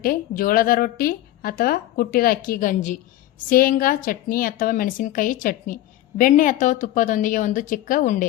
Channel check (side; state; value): right; quieter; 14.5 dB